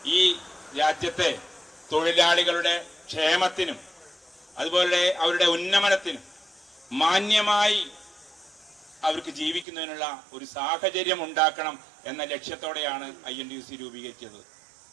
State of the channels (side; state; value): left; drops out; at 9.7 s